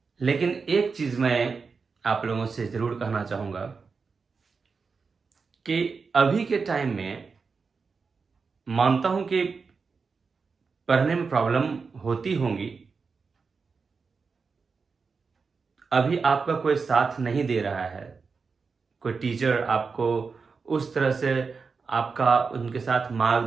लेकिन एक चीज मैं आप लोगों से जरूर कहना चाहूंगा कि अभी के टाइम में मानता हूं कि पढ़ने में प्रॉब्लम होती होंगी। अभी आपका कोई साथ नहीं दे रहा है, कोई टीचर आपको उस तरह से आपका उनके साथ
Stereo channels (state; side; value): quieter; left; 4.9 dB